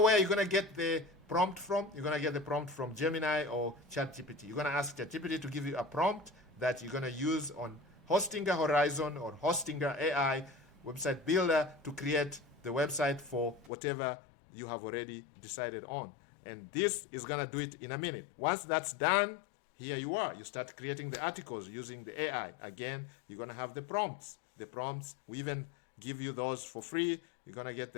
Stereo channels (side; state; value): right; drops out; at 13.7 s